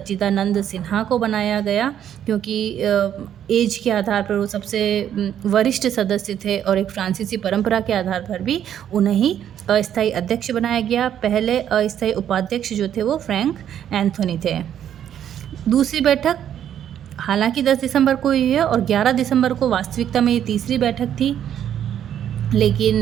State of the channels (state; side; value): quieter; left; 10.0 dB